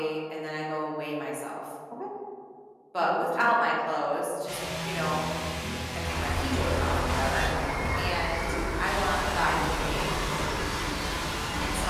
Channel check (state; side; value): identical; both; correlation 1.00